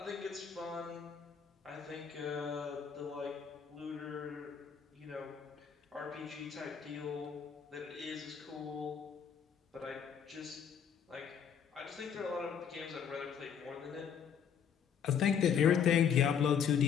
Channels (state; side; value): quieter; right; 7.6 dB